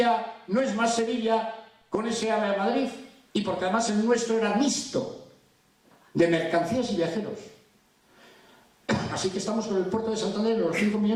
no es más Sevilla con ese AVE a Madrid, y porque además el nuestro era mixto de mercancías y viajeros. Así que estamos con el puerto de Santander en los 5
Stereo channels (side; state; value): both; identical; correlation 1.00